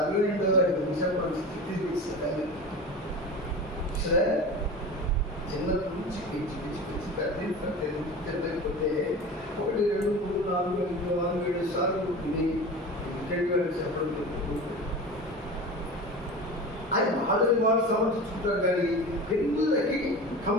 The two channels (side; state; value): both; normal; correlation 0.32